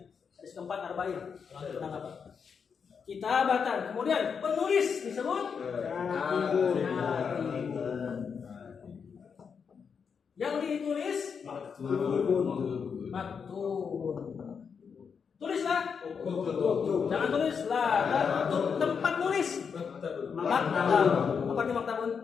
hadis keempat arba'in. Tentang apa? Kitabatan. Kemudian penulis disebut katibun. Yang ditulis maktubun. Tulislah. Jangan tulislah. Tempat nulis. Maktab. Apa di maktabun?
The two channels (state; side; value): quieter; right; 6.3 dB